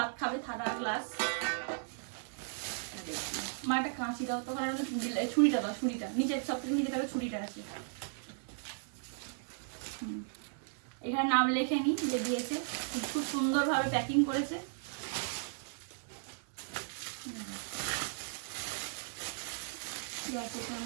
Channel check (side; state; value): left; silent; digital silence